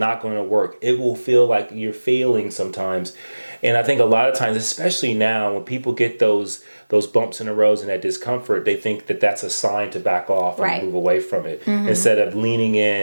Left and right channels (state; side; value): inverted; both; correlation -1.00